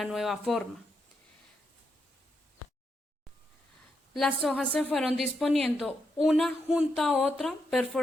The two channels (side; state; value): both; normal; correlation 0.82